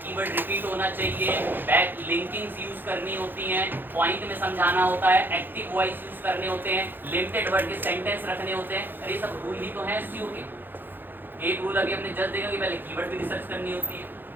कीवर्ड रिपीट होना चाहिए। बैक लिंकिंग्स यूज करनी होती हैं, पॉइंट में समझाना होता है, एक्टिव वॉइस यूज करने होते हैं, लिमिटेड वर्ड के सेंटेंस रखने होते हैं। अरे सब रूल ही तो हैं एसईओ के। एक रूल अभी हमने जस्ट देखा कि पहले कीवर्ड भी रिसर्च करनी होती है,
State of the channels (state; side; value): late; left; 0.093 ms